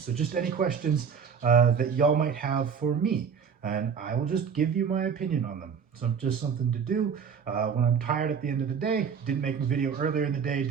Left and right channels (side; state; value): left; quieter; 6.7 dB